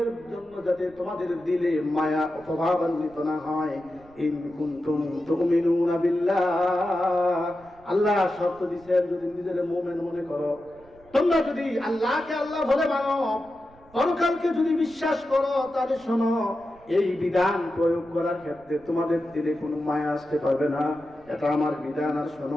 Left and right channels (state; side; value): noise; right; rumble, 27 dB below the sound